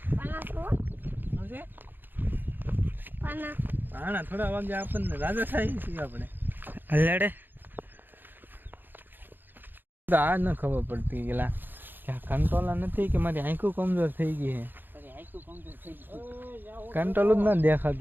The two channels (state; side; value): late; left; 0.093 ms